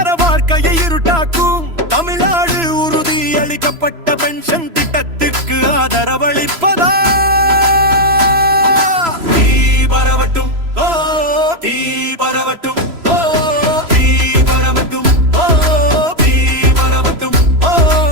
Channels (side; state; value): left; late; 3.0 ms